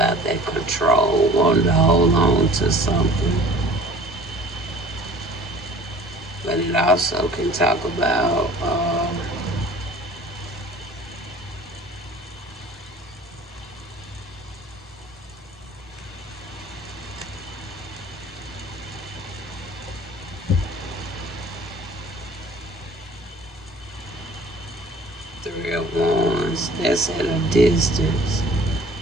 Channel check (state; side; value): normal; both; correlation 0.48